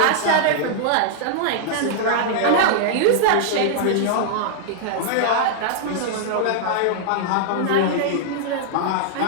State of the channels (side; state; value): both; different; correlation -0.01